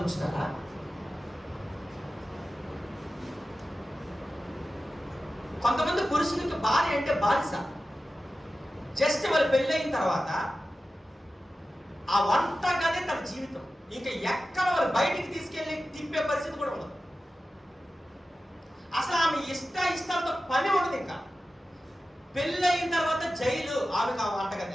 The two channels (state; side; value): normal; both; correlation 0.94